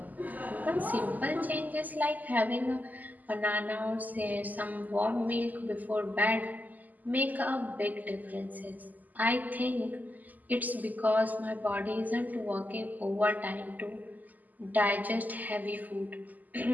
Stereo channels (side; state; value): left; late; 0.082 ms